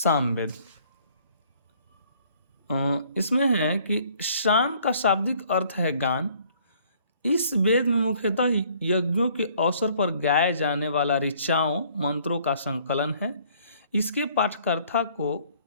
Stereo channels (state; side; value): inverted; both; correlation -0.60